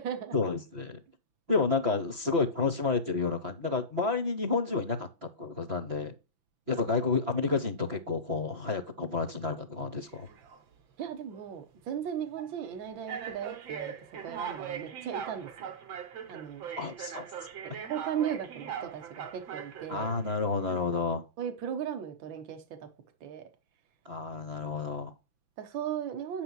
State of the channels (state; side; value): late; left; 6.0 ms